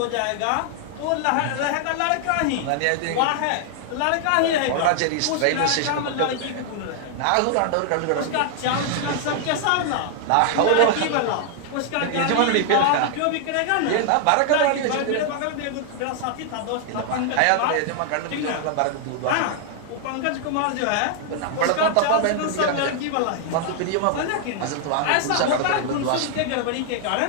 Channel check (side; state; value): both; different; correlation 0.00